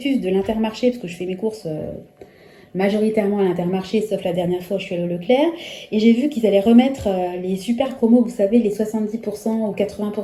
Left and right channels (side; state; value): both; identical; correlation 1.00